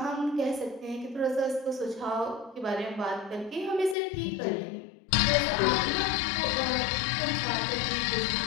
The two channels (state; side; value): drops out; right; at 4.0 s